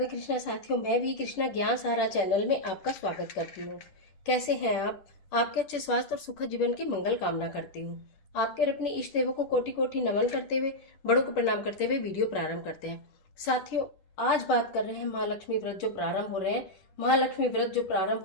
कृष्णा साथियों, मैं भी कृष्णा ज्ञान सहारा चैनल में आपका स्वागत करती हूँ। कैसे हैं आप? आपके अच्छे स्वास्थ्य और सुखद जीवन की मंगल कामना करती हूँ। आपके और अपने इष्ट देवों को कोटि कोटि नमन करते हुए, बड़ों को प्रणाम करते हुए वीडियो प्रारंभ करते हैं। साथियों, आज बात कर रहे हैं महालक्ष्मी व्रत जो प्रारंभ हो रहे हैं। महालक्ष्मी व्रत जो प्रारंभ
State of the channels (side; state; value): right; late; 10 ms